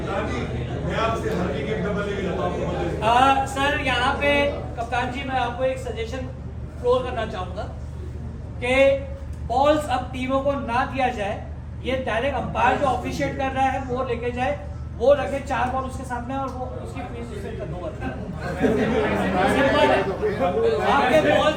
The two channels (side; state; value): both; identical; correlation 1.00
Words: सर यहाँ पे कप्तान जी मैं आपको एक सजेशन फ्लोर करना चाहूंगा कि बॉल्स अब टीमों को ना दिया जाए, ये डायरेक्ट अंपायर जो ऑफिशिएट कर रहा है वो लेके जाए, वो रखे 4 बॉल उसके सामने और वो उसकी फीस उससे खत्म होती है। आपके